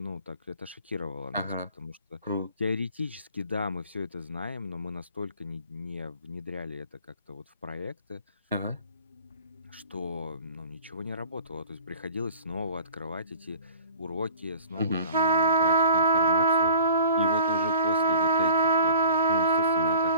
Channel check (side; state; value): both; inverted; correlation -0.46